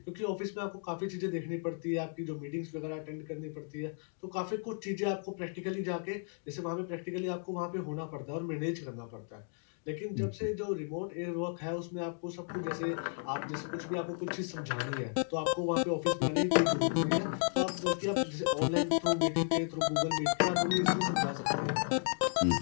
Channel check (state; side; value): silent; right; 55 dB below the other